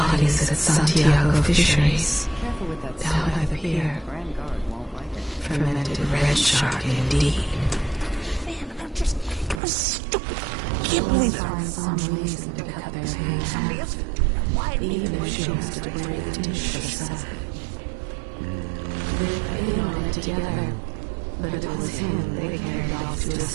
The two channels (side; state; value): left; drops out; at 9.6 s